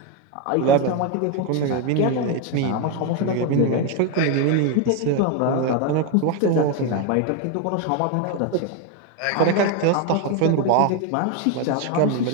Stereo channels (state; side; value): different; both; correlation 0.02